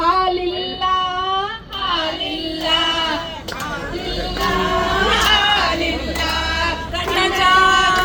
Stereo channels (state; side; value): identical; both; correlation 1.00